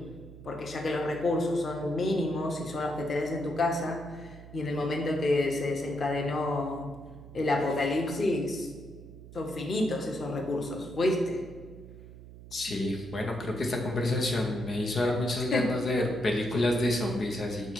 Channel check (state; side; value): noise; right; hum, 16 dB below the sound